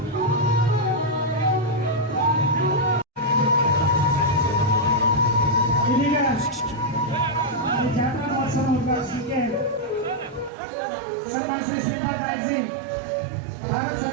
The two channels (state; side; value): drops out; left; at 10.5 s